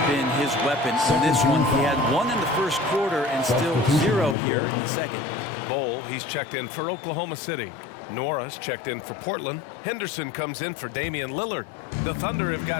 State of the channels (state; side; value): drops out; right; at 4.4 s